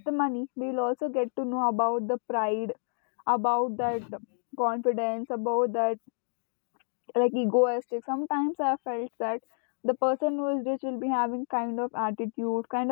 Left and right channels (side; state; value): right; silent; digital silence